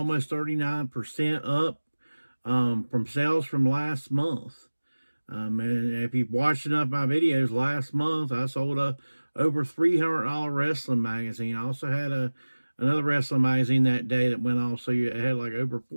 39% up from sales from last month. And if you've watched enough of my videos, last month I sold a over $300 wrestling magazine. I also had another wrestling magazine that day that went off, so you had like over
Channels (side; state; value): both; inverted; correlation -1.00